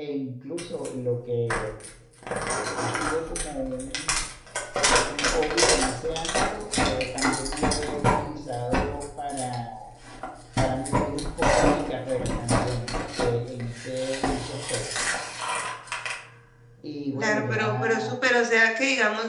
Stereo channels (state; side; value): identical; both; correlation 1.00